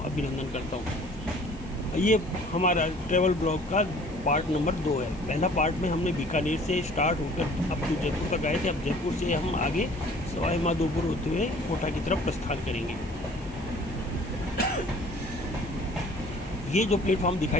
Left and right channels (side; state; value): left; noise; hiss, 26 dB below the sound